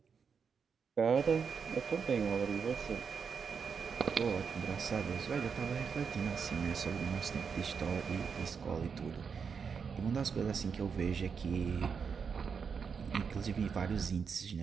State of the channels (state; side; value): quieter; left; 6.1 dB